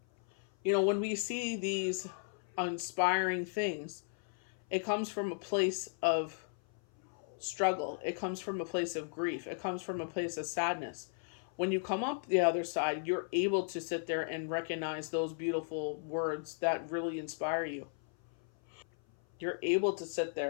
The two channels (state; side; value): silent; right; 54 dB below the other